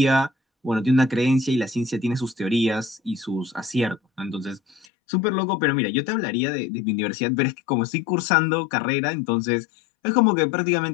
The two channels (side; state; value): right; drops out; at 4.9 s